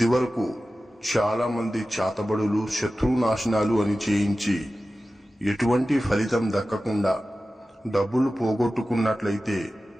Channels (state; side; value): normal; both; correlation 0.95